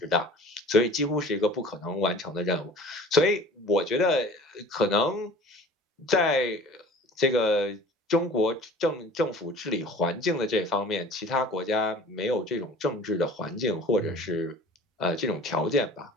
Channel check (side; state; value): both; normal; correlation 0.44